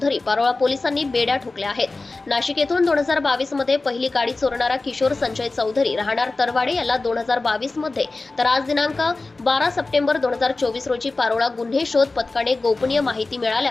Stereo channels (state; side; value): quieter; right; 3.4 dB